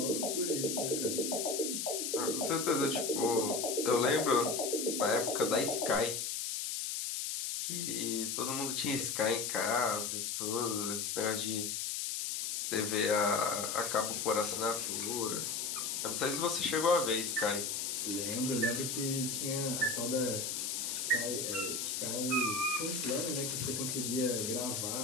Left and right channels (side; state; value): left; noise; hiss, 2 dB below the sound